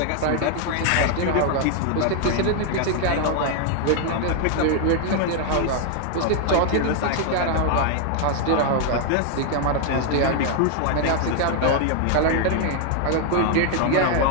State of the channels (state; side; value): different; both; correlation 0.00